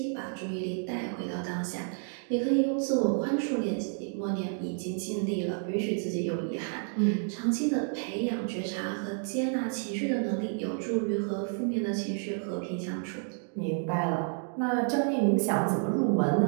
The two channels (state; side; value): silent; left; 58 dB below the other